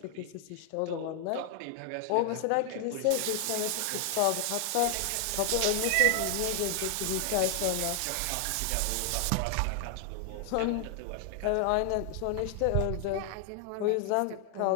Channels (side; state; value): both; different; correlation 0.00